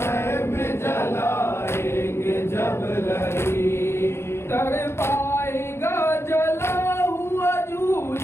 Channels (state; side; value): late; right; 0.12 ms